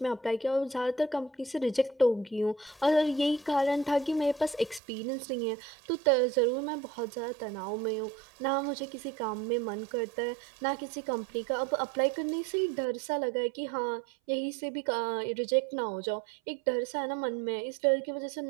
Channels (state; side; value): drops out; left; at 4.8 s